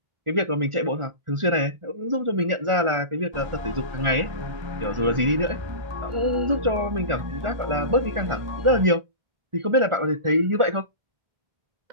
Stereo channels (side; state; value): left; late; 1.4 ms